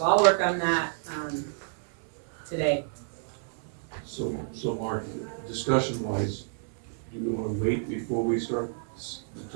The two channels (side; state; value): left; silent; digital silence